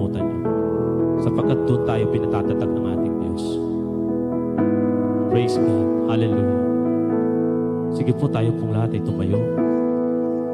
yun. Sapagkat doon tayo pinatatatag ng ating Diyos. Praise God. Hallelujah. Sige po, tayo pong lahat ay tumayo.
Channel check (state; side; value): identical; both; correlation 1.00